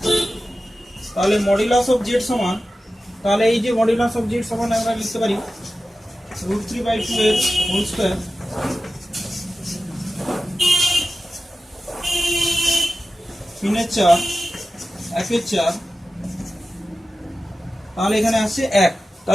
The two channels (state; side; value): normal; both; correlation 0.94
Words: তাহলে মডুলাস অফ জেড সমান, তাহলে এই যে মডুলাস অফ জেড সমান আমরা লিখতে পারি √3/2 এর হোল স্কয়ার তিনের 4 1-এর 4, তাহলে এখানে আসছে 1।